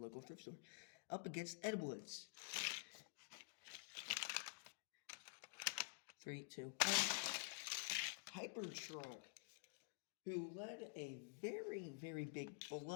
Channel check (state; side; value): silent; right; digital silence